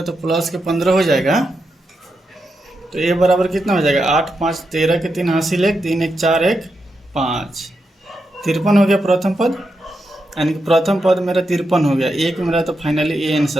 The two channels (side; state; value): both; normal; correlation 0.86